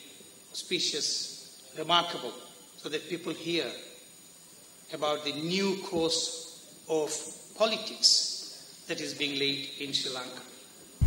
auspicious, remarkable, so that people hear about the new course of politics that is being laid in Sri Lanka.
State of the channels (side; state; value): both; normal; correlation 0.93